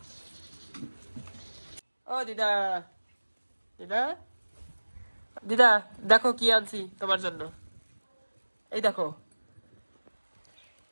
ও দিদা, দিদা, দিদা দেখো কি আনছি তোমার জন্য, এই দেখো।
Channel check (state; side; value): inverted; both; correlation -1.00